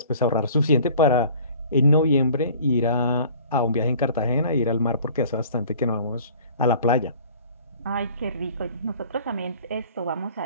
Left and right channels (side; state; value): both; inverted; correlation -0.49